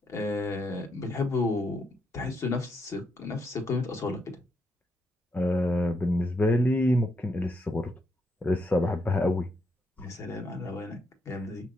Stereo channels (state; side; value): normal; both; correlation 0.79